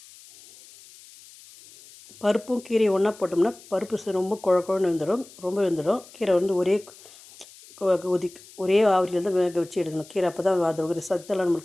பருப்பும் கீரையும் ஒன்றா போட்டோம்னா பருப்பு ரொம்ப குழன்னு வெந்துடும், ரொம்ப வெந்துடும். கீரை ஒரே ஆவிரியில் தான் வேக வச்சு எடுக்கணும். கீரை அப்போ தான் அது ஒரு சத்தெல்லாம்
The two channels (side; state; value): left; noise; hiss, 22 dB below the sound